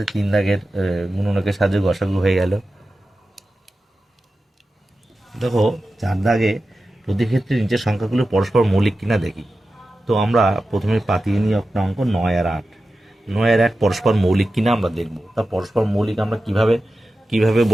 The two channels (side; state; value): both; normal; correlation 0.93